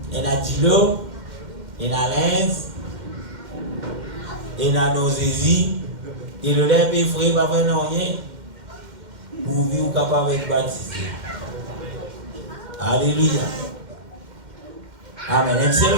Il y a Dilo, il y a Lens, il y a nos Jésus. Et le lève et frère va faire rien pour vivre capable d'être baptisé. Alléluia. Amen. C'est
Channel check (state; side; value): late; left; 2.1 ms